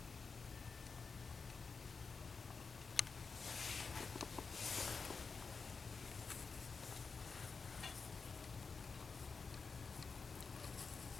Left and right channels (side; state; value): right; quieter; 4.9 dB